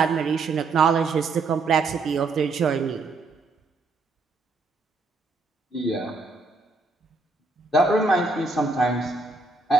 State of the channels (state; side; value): quieter; left; 3.7 dB